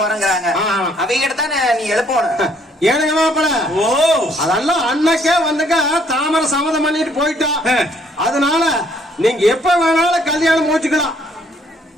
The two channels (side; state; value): both; normal; correlation 0.65